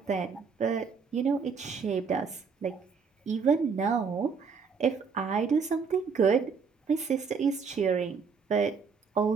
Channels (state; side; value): quieter; left; 5.5 dB